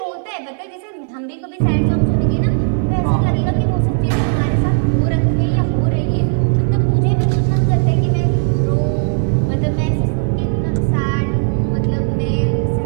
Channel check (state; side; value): silent; left; 60 dB below the other